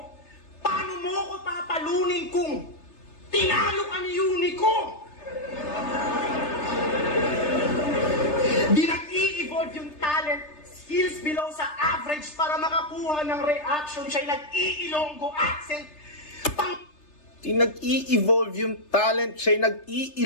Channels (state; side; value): late; right; 3.3 ms